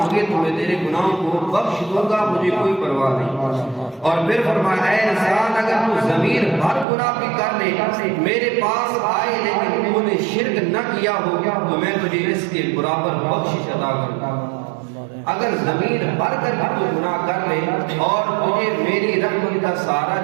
تو میں تیرے گناہوں کو بخش دوں گا، مجھے کوئی پرواہ نہیں۔ اور پھر فرمایا اے انسان، اگر تو ضمیر بھر گناہ بھی کر لے میرے پاس آئے لیکن تو نے شرک نہ کیا ہو تو میں تجھے اس کے برابر بخشش عطا کروں گا۔ اگر ضمیر بھر کر بھی تو گناہ کر لے اور تجھے میری رحمت کا سہارا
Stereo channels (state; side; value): drops out; left; at 6.9 s